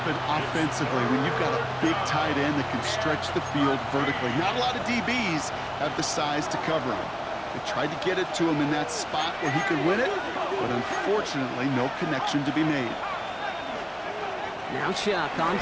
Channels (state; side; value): identical; both; correlation 1.00